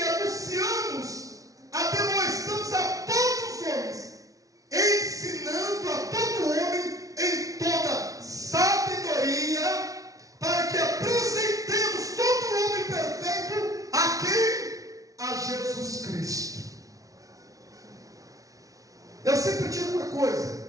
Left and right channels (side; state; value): left; late; 0.17 ms